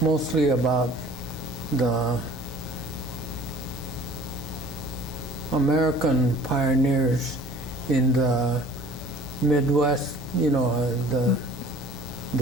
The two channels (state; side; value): normal; both; correlation 0.50